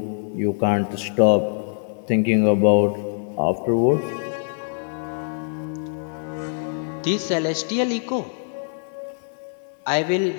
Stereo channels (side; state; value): right; silent; digital silence